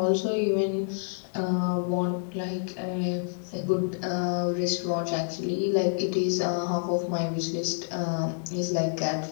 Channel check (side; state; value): right; silent; 59 dB below the other